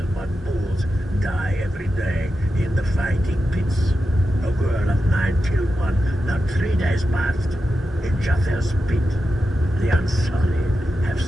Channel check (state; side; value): normal; both; correlation 0.90